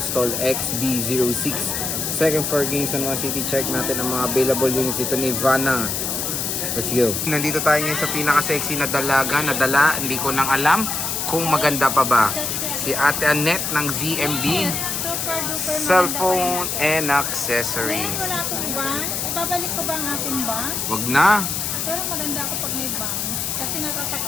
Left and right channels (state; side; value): noise; left; hiss, 1 dB below the sound